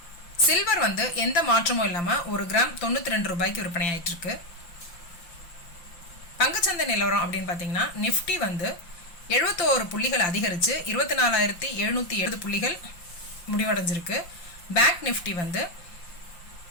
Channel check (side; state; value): right; late; 5.7 ms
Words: சில்வர் எந்த மாற்றமும் இல்லாமல் ஒரு கிராம் 92 ரூபாய்க்கு விற்பனை ஆயிட்டு இருக்கு. பங்குச்சந்தை நிலவரம் அப்படின்னு பார்த்தீங்கன்னா, நிஃப்டி 71 புள்ளிகள் அதிகரித்து 24,770 புள்ளிகள் முடிவடைஞ்சிருக்கு. பேங்க் நிஃப்டி